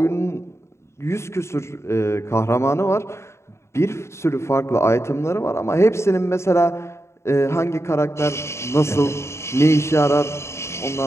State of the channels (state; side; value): late; right; 0.13 ms